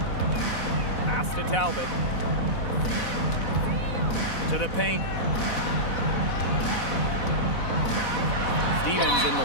Pass to Talbot. To the paint. Stevens in the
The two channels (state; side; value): late; right; 4.1 ms